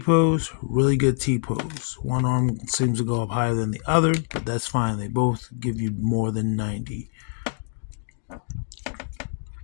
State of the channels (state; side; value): silent; right; digital silence